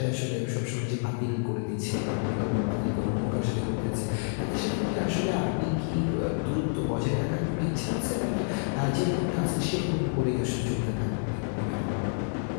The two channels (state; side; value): silent; right; digital silence